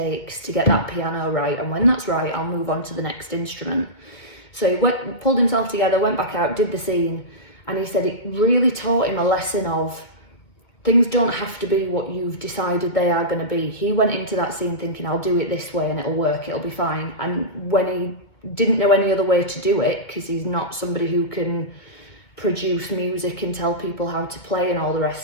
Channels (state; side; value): late; right; 2.2 ms